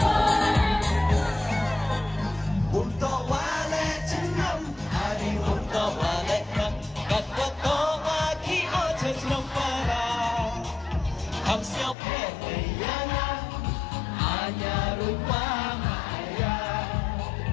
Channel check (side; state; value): right; drops out; at 12.0 s